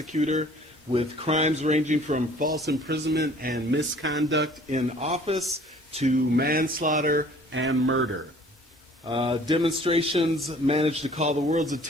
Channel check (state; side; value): normal; both; correlation 0.53